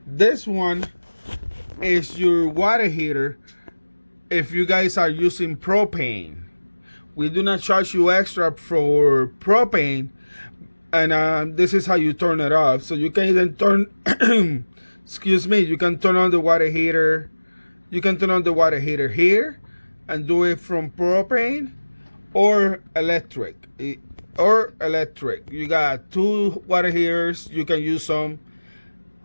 This one is your water heater if you guys are using propane. We do not charge you extra for propane, and this is how you turn it off. So you can either turn excuse me, you can turn on the water heater. You can turn on the water heater here and do it from propane or electric. You got two water heaters. You can use some.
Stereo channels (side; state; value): both; inverted; correlation -1.00